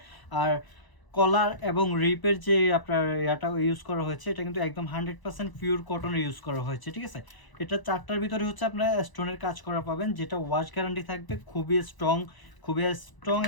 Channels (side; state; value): right; late; 1.0 ms